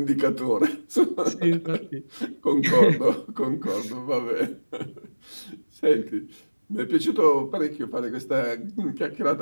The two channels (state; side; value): inverted; both; correlation -1.00